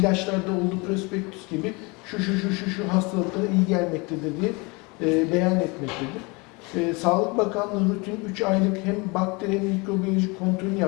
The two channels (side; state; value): right; quieter; 27.6 dB